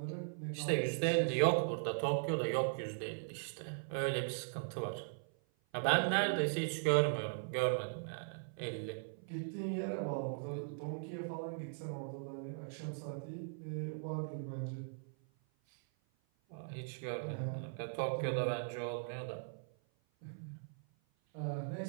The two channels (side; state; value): left; silent; 52 dB below the other